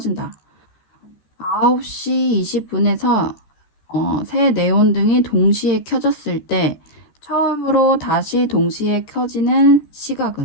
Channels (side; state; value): right; late; 14 ms